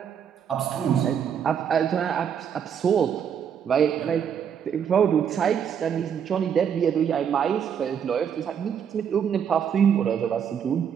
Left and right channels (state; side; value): quieter; left; 8.0 dB